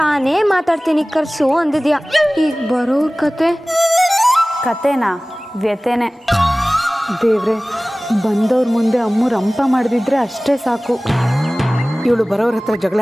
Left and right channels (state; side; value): normal; both; correlation 0.98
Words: ಮಾತಾಡ್ತೀನಿ ಕರ್ಸು ಅಂದಿದ್ಯಾ. ಈಗ ಬರೋರ್ ಕತೆನಾ ವ್ಯತೆನೆ. ದೇವ್ರೆ, ಬಂದವ್ರ ಮುಂದೆ ಅಮ್ಮು ರಂಪ ಮಾಡಿದ್ರೆ ಅಷ್ಟೇ ಸಾಕು. ಇವಳು ಬರೋರ ಹತ್ರ ಜಗಳ